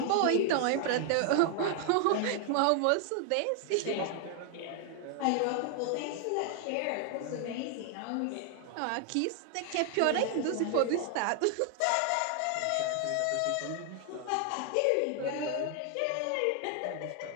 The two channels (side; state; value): both; different; correlation 0.00